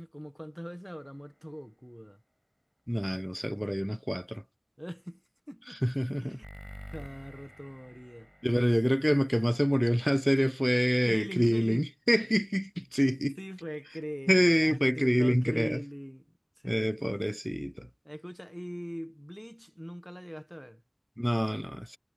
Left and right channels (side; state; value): both; identical; correlation 1.00